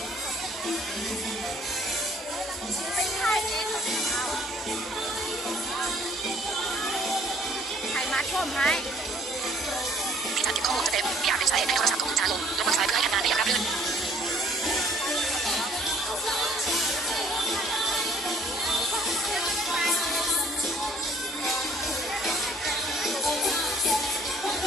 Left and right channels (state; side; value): normal; both; correlation 0.58